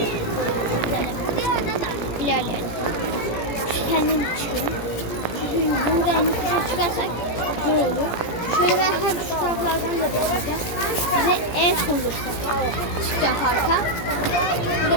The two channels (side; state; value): right; late; 17 ms